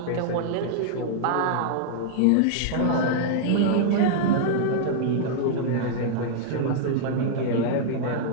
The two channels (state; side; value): different; both; correlation -0.01